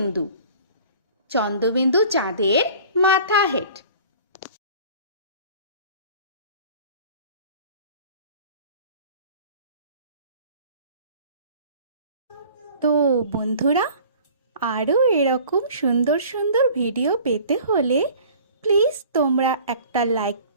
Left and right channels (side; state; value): both; inverted; correlation -0.47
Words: চন্দ্রবিন্দু চাঁদের মাথা হেড। তো বন্ধুরা, আরও এরকম সুন্দর সুন্দর ভিডিও পেতে হলে প্লিজ তোমরা একটা লাইক